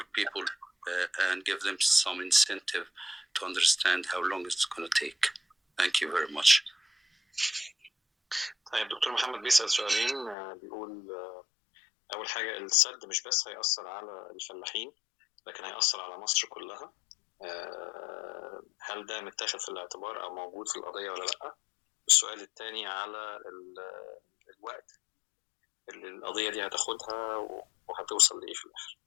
people and give them some incentive to understand how long it's going to take. Thank you very much. طيب دكتور محمد بيسأل سؤالين. بيقول أول حاجة السد مش بس هيأثر على الفلاحين لكن هيأثر على مصر كلها. هل ده متاخد في الاعتبار أو موجود في القضية ولا لأ؟ السؤال الثاني على الوقت اللي القضية دي هتاخدها وهتوصل لإيه في الآخر.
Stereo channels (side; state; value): right; drops out; at 10.4 s